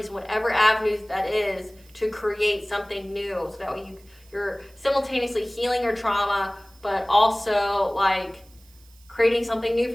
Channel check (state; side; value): noise; right; hiss, 28 dB below the sound